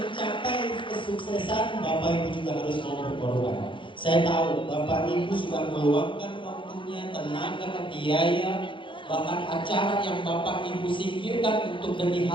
kesuksesan Bapak Ibu juga harus mau berkorban. Saya tahu Bapak Ibu sudah meluangkan waktunya, tenaga, biaya, bahkan acara yang Bapak Ibu singkirkan untuk demi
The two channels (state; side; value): late; right; 0.24 ms